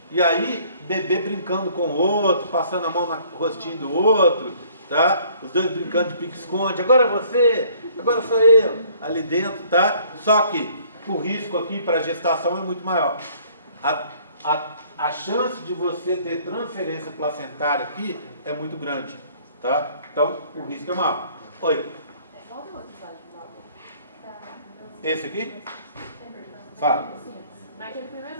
E aí, bebê brincando com o outro, passando a mão no rostinho do outro, tá? Os dois brincando de pique-esconde. Agora é você, agora sou eu. Ali dentro, tá? Só que o risco aqui para a gestação é muito maior. A chance de você ter transferência placentária aqui é muito grande, tá? Então, o risco é maior. Oi. Esse aqui? Fala. Naquele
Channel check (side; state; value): both; inverted; correlation -0.58